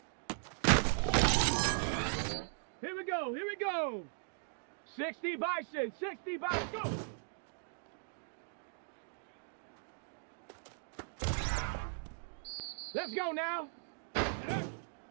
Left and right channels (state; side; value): silent; left; digital silence